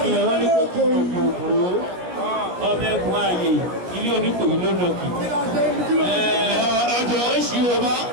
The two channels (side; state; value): left; late; 17 ms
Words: Ìyẹ̀wò ní kókó ìgbòho ọmọ ẹ̀kún ààyè ilé oníkòyí lónàkì. Ọjọ́ oṣù ọba